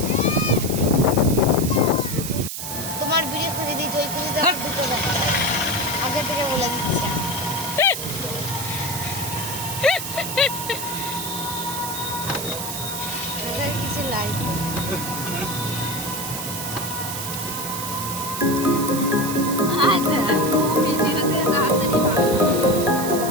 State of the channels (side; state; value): right; noise; hiss, 6 dB below the sound